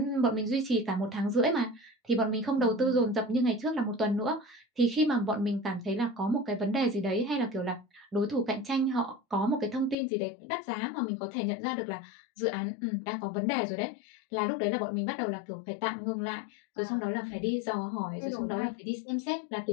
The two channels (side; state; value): right; drops out; at 10.0 s